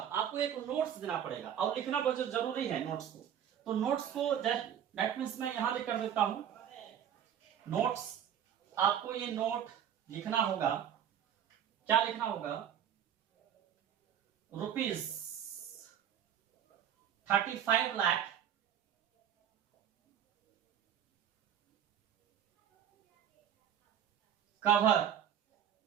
आपको एक नोट्स देना पड़ेगा, और लिखना बहुत जरूरी है नोट्स को। तो नोट्स को दैट मींस मैं यहां लिख कर देता हूं नोट्स। आपको ये नोट लिखना होगा, क्या लिखना होगा? रुपीज 35 लाख कवर,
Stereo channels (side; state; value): left; quieter; 9.4 dB